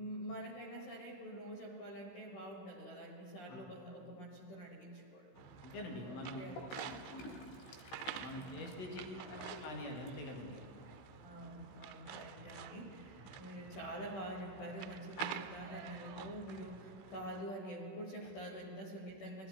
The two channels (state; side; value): late; right; 15 ms